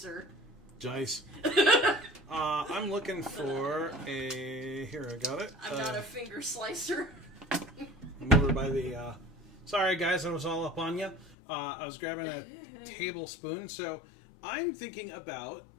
Dice. I'm looking for a... Here, I got it. I'm not a finger slicer. I'm over by the... Sorry, guys, I was all up on you. I was grabbing a tablespoon, so I'm thinking about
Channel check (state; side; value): drops out; right; at 11.4 s